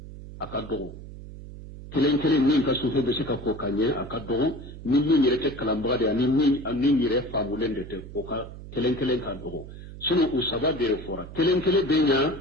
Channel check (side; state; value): right; noise; hum, 14 dB below the sound